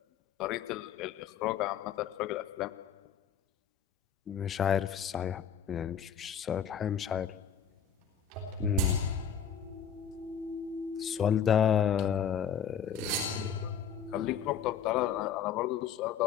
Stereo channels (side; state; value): right; quieter; 7.7 dB